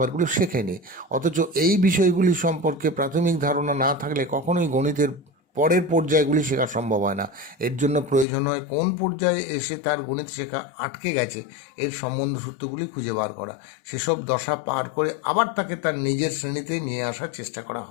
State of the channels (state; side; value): drops out; right; at 8.2 s